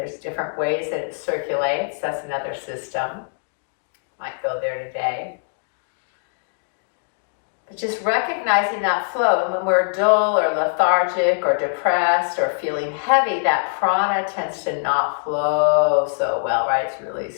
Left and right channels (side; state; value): right; silent; digital silence